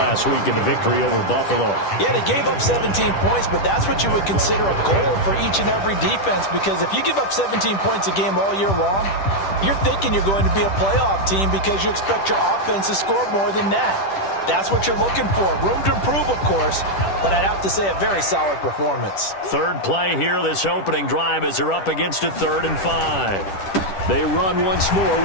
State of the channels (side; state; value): right; late; 10 ms